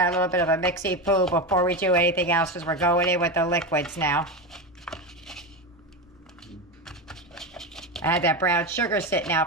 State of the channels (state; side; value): normal; both; correlation 0.18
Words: a little bit of a mixy-poo before we do anything else because we're going in with the liquids now. I had that brown sugar sitting